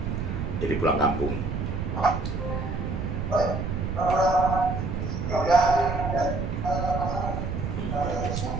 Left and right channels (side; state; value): right; noise; rumble, 3 dB below the sound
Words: jadi pulang kampung.